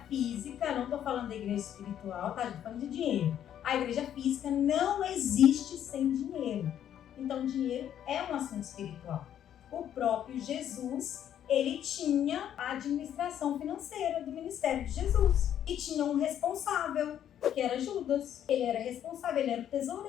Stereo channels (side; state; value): right; quieter; 10.3 dB